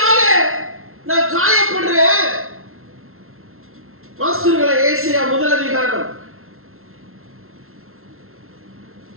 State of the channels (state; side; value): late; left; 0.62 ms